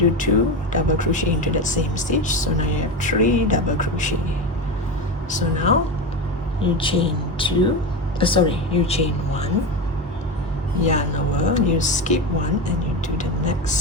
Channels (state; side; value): normal; both; correlation 0.20